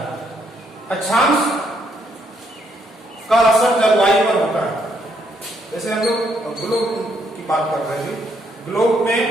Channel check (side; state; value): both; normal; correlation 0.73